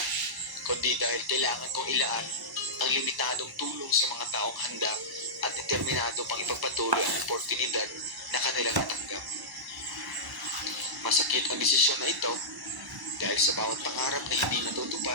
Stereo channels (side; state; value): left; late; 1.0 ms